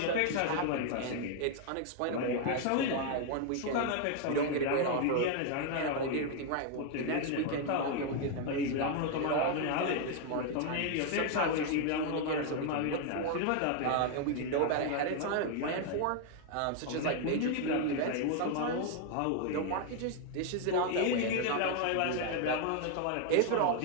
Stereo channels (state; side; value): different; both; correlation 0.00